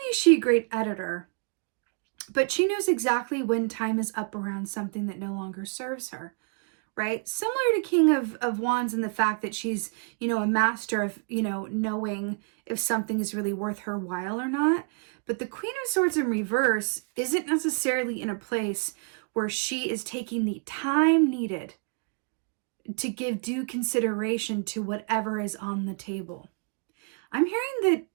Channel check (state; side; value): quieter; left; 37.4 dB